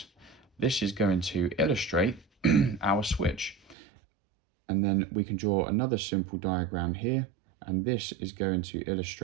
This is going to illustrate our switch. And then we can draw another simple diagram here, and this is going to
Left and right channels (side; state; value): left; drops out; at 3.8 s